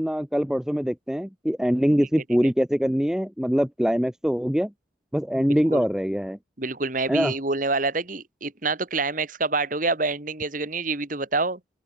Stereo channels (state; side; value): normal; both; correlation 0.70